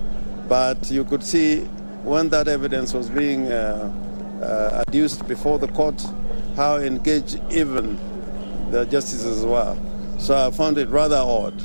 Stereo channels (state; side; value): inverted; both; correlation -1.00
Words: but you could see when that evidence was being adduced before the court, how engaged even the justices were. So I found it rather odd